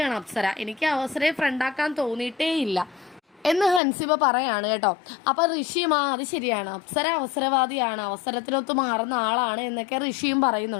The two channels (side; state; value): right; drops out; at 3.8 s